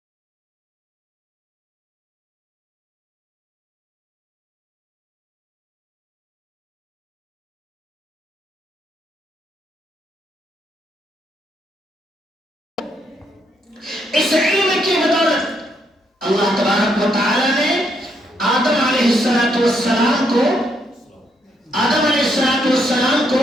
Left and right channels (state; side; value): normal; both; correlation 0.75